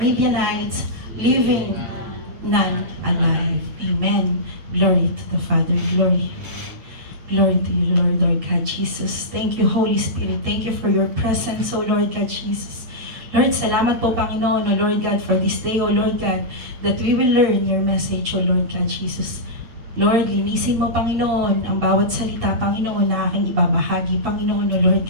leaving none alive. Amen. Glory to the Father. Glory. Glory to you, Lord, Lord God Jesus. Thank you, Holy Spirit. Thank you for your presence, O Lord God Jesus. Lord, salamat po, Panginoon, O Lord God, for this day, O Lord God, that we will learn your message, O Lord God Jesus. Lord, linisin mo, Panginoon, ang bawat salita, Panginoon, na aking ibabahagi, Panginoon, O Lord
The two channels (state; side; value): late; left; 8.5 ms